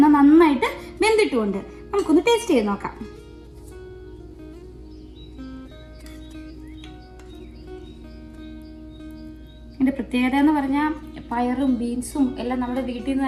നന്നായിട്ട് വെന്തിട്ടുമുണ്ട്. നമുക്കൊന്ന് ടേസ്റ്റ് ചെയ്ത് നോക്കാം. ഇതിൻ്റെ പ്രത്യേകത എന്ന് പറഞ്ഞാൽ പയറും ബീൻസും എല്ലാം നമ്മുടെ വീട്ടിൽ നിന്ന്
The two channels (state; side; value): identical; both; correlation 1.00